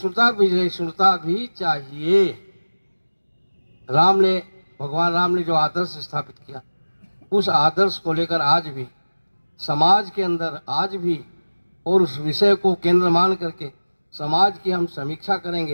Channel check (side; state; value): both; inverted; correlation -1.00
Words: विजयिष्णुता भी चाहिए। भगवान राम ने जो आदर्श स्थापित किया, उस आदर्श को लेकर आज भी समाज के अंदर आज भी, और उस विषय को केंद्र मान करके समाज की हम समीक्षा